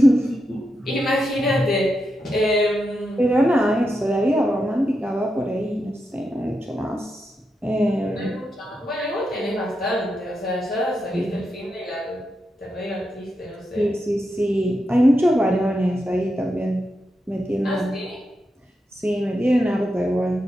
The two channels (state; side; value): normal; both; correlation 0.86